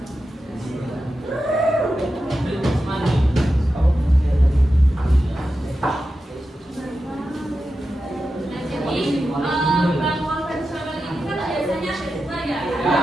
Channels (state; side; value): normal; both; correlation 0.91